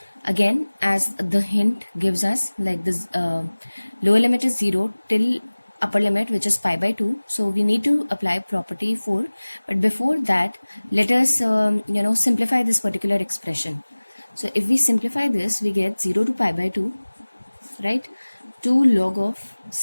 Again, as the hint gives us, like this lower limit is 0 till upper limit, which is pi by 2. So we need to apply property 4. But before that, let us simplify this particular expression. So if we simplify this, we get 0 to pi by 2, right? 2 log of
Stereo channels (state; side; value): inverted; both; correlation -1.00